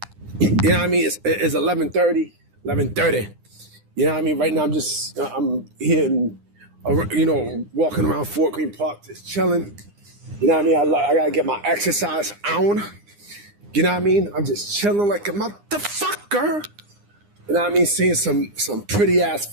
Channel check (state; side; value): late; left; 9.8 ms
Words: You know what I mean? It's 11:30. 11:30. You know what I mean? Right now, I'm here, walking around Fort Greene Park, just chilling. You know what I mean? I gotta get my exercise on. You know what I mean? I'm just chilling like a motherfucker. You know what I mean? Seeing some pretty ass